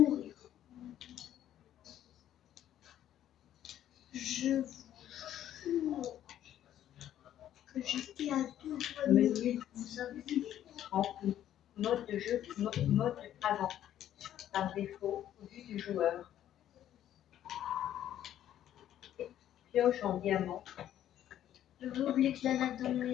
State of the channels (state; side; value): quieter; right; 11.5 dB